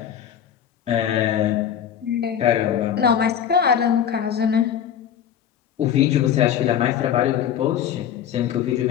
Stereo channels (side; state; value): right; quieter; 9.2 dB